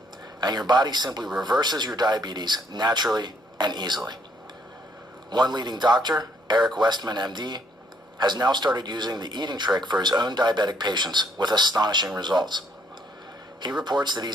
And your body simply reverses your diabetes naturally and easily. One leading doctor, Eric Westman, MD, has now started using the eating trick for his own diabetic patients with astonishing results. He reports that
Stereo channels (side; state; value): both; normal; correlation 0.68